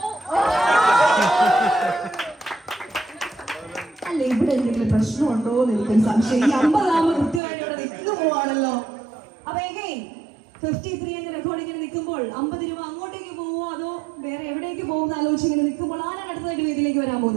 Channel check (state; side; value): drops out; left; at 7.4 s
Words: അല്ല, ഇവിടെ എന്തെങ്കിലും പ്രശ്നമുണ്ടോ എന്ന് എനിക്കൊരു സംശയം. ഈ 50 ആകുമ്പോൾ കൃത്യമായിട്ട് ഇവിടെ നിൽക്കുന്നു പോവാണല്ലോ. അപ്പൊ എഗൈൻ 53 എന്ന റെക്കോർഡ് ഇങ്ങനെ നിൽക്കുമ്പോൾ 50 രൂപ അങ്ങോട്ടേക്ക് പോവോ അതോ വേറെ എവിടേക്ക് പോകുന്ന ആലോചിച്ച് ഇങ്ങനെ നിൽക്കുമ്പോൾ ആരാണ് അടുത്തതായിട്ട് വേദിയിലേക്ക് വരാൻ